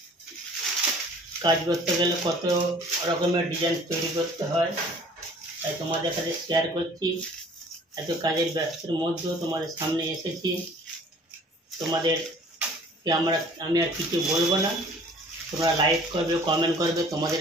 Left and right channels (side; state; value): both; normal; correlation 0.51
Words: কাজ করতে গেলে কত রকমের ডিজাইন তৈরি করতে হয়, তাই তোমাদের কাছে শেয়ার করছি। এত কাজের ব্যস্তের মধ্যেও তোমাদের সামনে এসেছি। তোমাদেরকে আমি আর কিছু বলবো না, তোমরা লাইক করবে, কমেন্ট করবে, তোমাদের